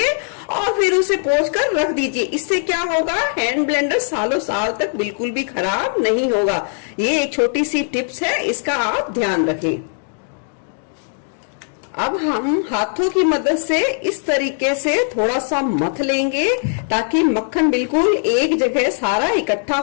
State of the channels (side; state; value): right; silent; digital silence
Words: और फिर उसे पोंछ कर रख दीजिए। इससे क्या होगा, हैंड ब्लेंडर सालों साल तक बिल्कुल भी खराब नहीं होगा। ये एक छोटी सी टिप्स है, इसका आप ध्यान रखें। अब हम हाथों की मदद से इस तरीके से थोड़ा सा मथ लेंगे ताकि मक्खन बिल्कुल एक जगह सारा इकट्ठा